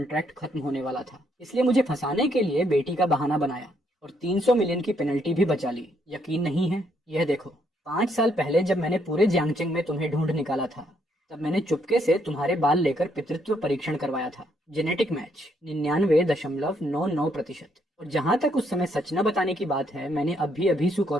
खत्म होने वाला था, इसलिए मुझे फंसाने के लिए बेटी का बहाना बनाया और 300 मिलियन की पेनल्टी भी बचा ली। यकीन नहीं है? यह देखो, 5 साल पहले जब मैंने पूरे जियांगचिंग में तुम्हें ढूंढ निकाला था, तब मैंने चुपके से तुम्हारे बाल लेकर पितृत्व परीक्षण करवाया था। Genetic match 99.99%। और जहां तक उस समय सच न बताने की बात है, मैंने अभी अभी सु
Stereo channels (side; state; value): both; normal; correlation 0.72